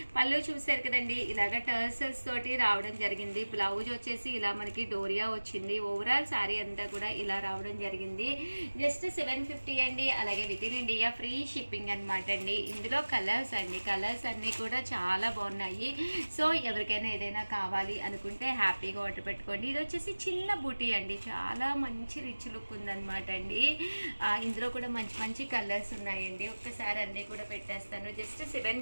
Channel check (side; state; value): both; inverted; correlation -1.00